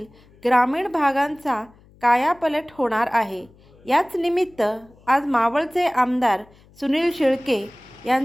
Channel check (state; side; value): noise; left; hum, 28 dB below the sound